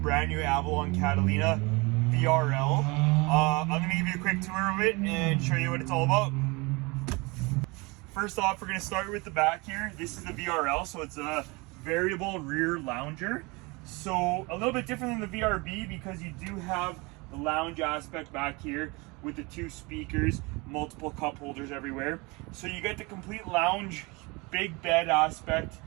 new Avalon Catalina VRL. I'm going to give you a quick tour of it and show you what it's all about. First off, we're going to start with the back here. This is the VRL, so it's a variable rear lounger. So a little bit different than the VRB because you do have the lounge aspect back here with the two speakers, multiple cup holders everywhere. So you get the complete lounge, big bed aspect,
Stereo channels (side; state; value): left; quieter; 26.4 dB